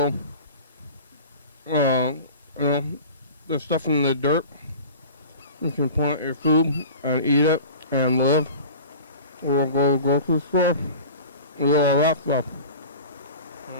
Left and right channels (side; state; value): both; inverted; correlation -0.38